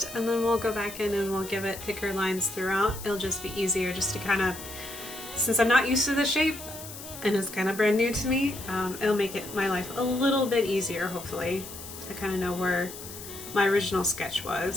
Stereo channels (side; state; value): left; noise; hiss, 12 dB below the sound